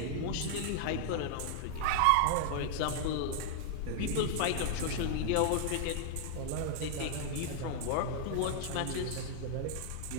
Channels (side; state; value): both; different; correlation 0.00